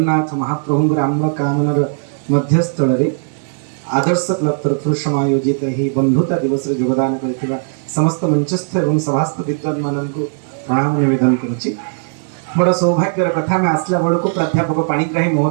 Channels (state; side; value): silent; left; digital silence